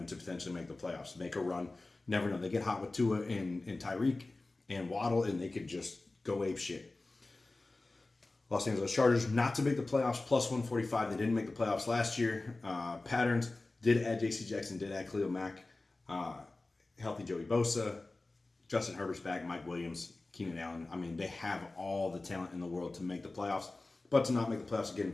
to potentially make the playoffs, make a run. Never know. They get hot with Tua and Tyreek and Waddle, and they could just go ape shit. Los Angeles Chargers not to make the playoffs, plus 145. They didn't make the playoffs last year. Patterns did add J.C. Jackson, did add Khalil Mack. Healthy Joey Bosa. Justin Herbert's back, Mike Williams, Keenan Allen. I mean, they have all the talent in the world to make the playoffs. But to not make the playoffs, again,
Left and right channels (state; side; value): quieter; right; 3.2 dB